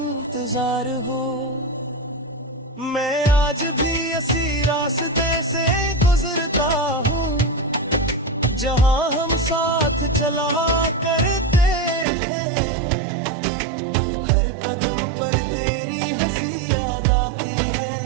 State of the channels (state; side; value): drops out; left; at 12.1 s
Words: हो, मैं आज भी इसी रास्ते से गुजरता हूँ, जहाँ हम साथ चला करते थे। हर कदम पर तेरी हंसी याद आती है,